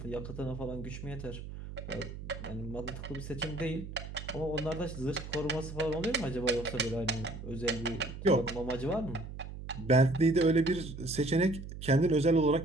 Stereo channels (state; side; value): noise; right; hum, 10 dB below the sound